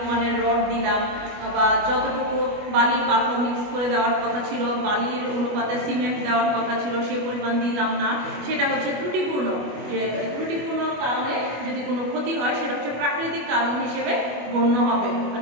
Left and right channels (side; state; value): left; late; 25 ms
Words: রড দিলাম, বা যতটুকু বালি পাথর মিক্স করে দেওয়ার কথা ছিল, বালির অনুপাতে সিমেন্ট দেওয়ার কথা ছিল সে পরিমাণ দিলাম না, সেটা হচ্ছে ত্রুটিপূর্ণ। যে ত্রুটিপূর্ণ কারণে যদি কোনো ক্ষতি হয় সেটা হচ্ছে প্রাকৃতিক কারণ হিসেবে গণ্য হবে।